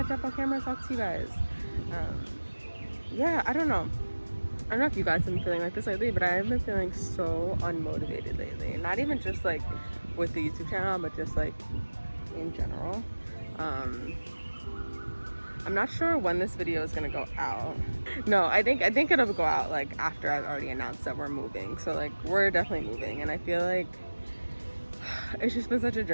jump on camera and talk to you guys. Yeah, I don't know. I don't know if you guys have been feeling like this lately, but I've been feeling so unmotivated lately. Not even just like with the YouTube channel, but just like in general. I'm not sure when this video is gonna go out. No, I think it'll go out like after I've already announced that we're moving. So like we're definitely moving, and I feel like it's just been such a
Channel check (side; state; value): both; inverted; correlation -1.00